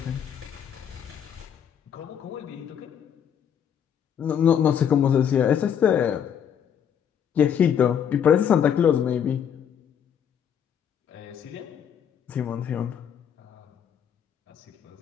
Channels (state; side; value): quieter; right; 8.5 dB